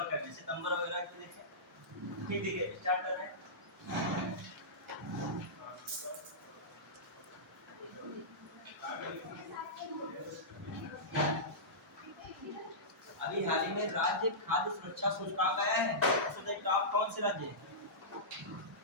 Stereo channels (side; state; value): both; normal; correlation -0.17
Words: करने से सितंबर वगैरह को देखें। ठीक है, स्टार्ट कर रहे हैं। अभी हाल ही में राज्य खाद्य सुरक्षा सूचकांक आया है, उसमें टॉप कौन से राज्य है?